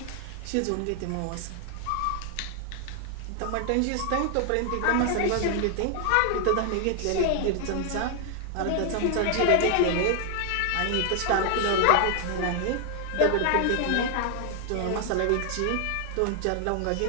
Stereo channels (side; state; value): both; different; correlation 0.00